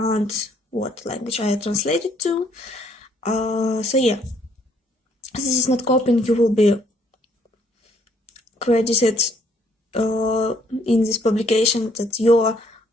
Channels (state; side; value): normal; both; correlation 0.66